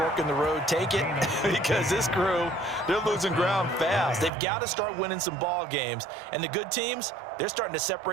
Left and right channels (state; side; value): drops out; left; at 4.3 s